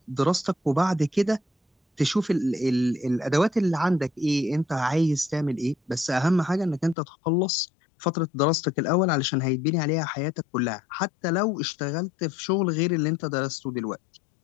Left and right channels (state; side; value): drops out; right; at 7.0 s